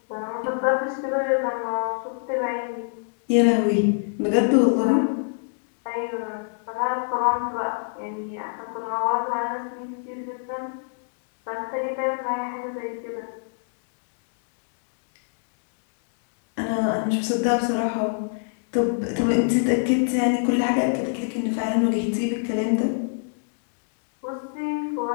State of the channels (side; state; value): right; silent; digital silence